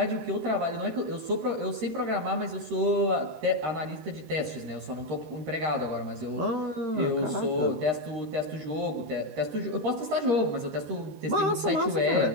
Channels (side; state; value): left; late; 13 ms